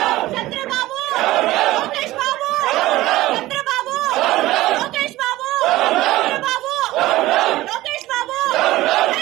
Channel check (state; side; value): quieter; left; 17.1 dB